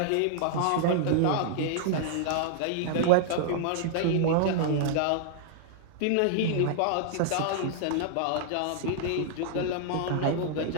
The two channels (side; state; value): both; different; correlation -0.01